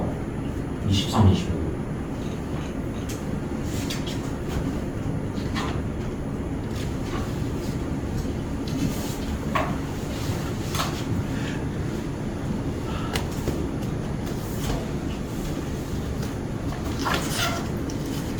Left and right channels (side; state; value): both; identical; correlation 1.00